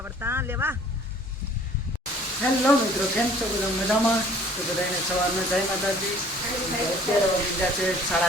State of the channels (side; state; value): both; normal; correlation 0.53